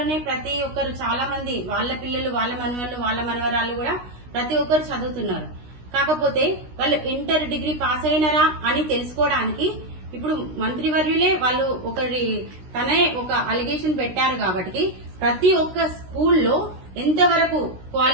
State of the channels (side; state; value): left; late; 16 ms